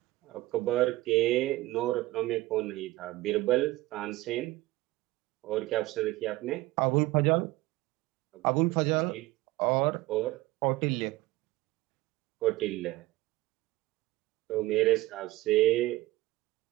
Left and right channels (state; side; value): quieter; left; 18.6 dB